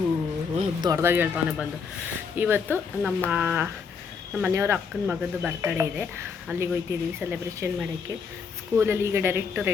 ದೊಡ್ಡದಾಗಿ ಹೇಳ್ತಾನೆ ಬಂದು. ಇವತ್ತು ನಮ್ಮ ಮನೆಯವರ ಅಕ್ಕನ ಮಗದ್ದು ಬರ್ತಡೇ ಇದೆ. ಅಲ್ಲಿಗೆ ಹೋಗ್ತಿದ್ದೀವಿ ಸೆಲೆಬ್ರೇಷನ್ ಮಾಡೋಕ್ಕೆ. ಸ್ಕೂಲಲ್ಲಿ ಈಗ ಡೈರೆಕ್ಟ್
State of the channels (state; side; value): quieter; right; 5.8 dB